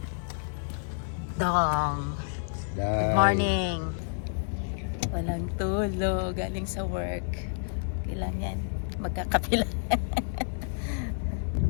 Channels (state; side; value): silent; right; 56 dB below the other